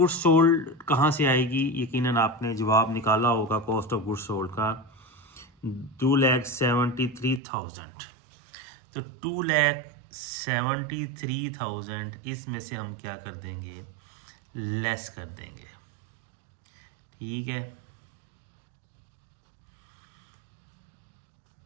सोल्ड कहाँ से आएगी? यकीनन आपने जवाब निकाला होगा कॉस्ट ऑफ गुड्स सोल्ड का, 2,73,000। तो 2,73,000 इसमें से हम क्या कर देंगे? लेस कर देंगे। ठीक है,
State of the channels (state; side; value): drops out; left; at 7.4 s